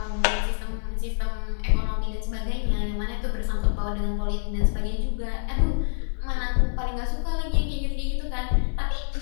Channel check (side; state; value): right; silent; digital silence